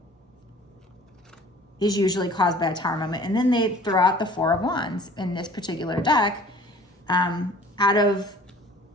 is usually caused by a Tower moment. And then they throw out the 4 of Wands in this particular deck. Out of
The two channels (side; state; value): both; normal; correlation 0.49